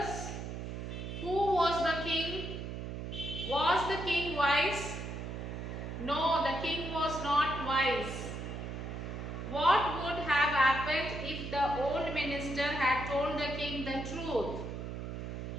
Who was the king? Was the king wise? No, the king was not wise. What would have happened if the old minister had told the king the truth?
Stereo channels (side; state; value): right; noise; hum, 6 dB below the sound